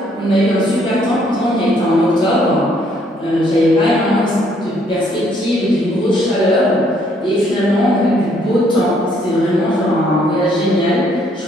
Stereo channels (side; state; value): both; normal; correlation 0.67